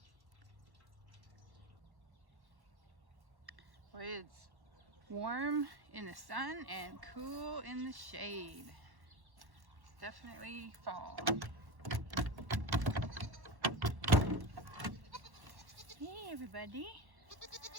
Boy, it's warm in the sun and cool in the shade. It's definitely fall. Hey everybody.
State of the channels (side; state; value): left; late; 1.1 ms